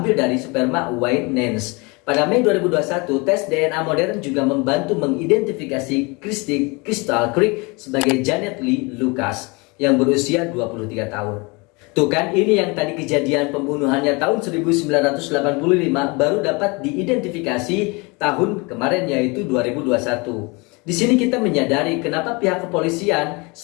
dari sperma Wayne Nance. Pada Mei 2021, tes DNA modern juga membantu mengidentifikasi Christy Crystal Creek sebagai Janet Lee Lucas yang berusia 23 tahun. Tuh kan, ini yang tadi kejadian pembunuhannya tahun 1985 baru dapat diidentifikasi tahun kemarin yaitu 2021. Di sini kita menyadari kenapa pihak kepolisian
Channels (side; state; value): right; quieter; 27.8 dB